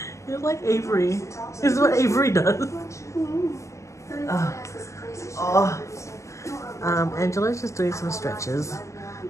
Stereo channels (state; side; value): late; right; 0.15 ms